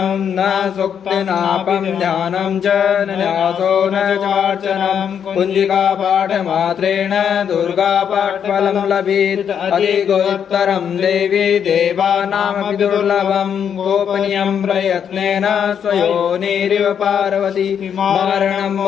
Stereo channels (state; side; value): quieter; right; 8.1 dB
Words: न सूक्तिनापं ध्यानं च न न्यासो न चार्चनं कुञ्जिकापाठमात्रेण दुर्गापाठफलं लभेत् अधिकोत्तरं देवी देवानामपि दुर्लभं गोपनीयं प्रयत्नेन स्वयोनिरिव पार्वती मारणं